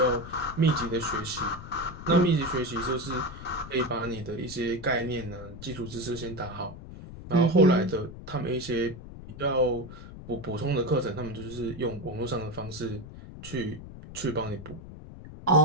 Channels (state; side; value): noise; left; rumble, 13 dB below the sound